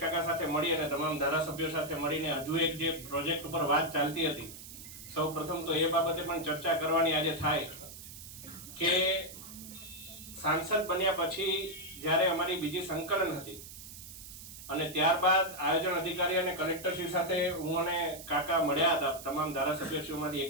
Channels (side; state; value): right; noise; hiss, 14 dB below the sound